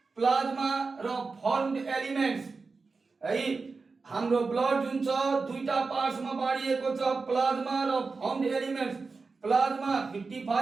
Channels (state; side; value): quieter; left; 4.3 dB